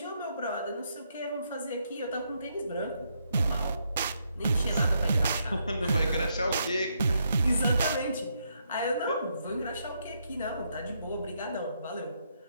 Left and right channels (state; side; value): inverted; both; correlation -0.77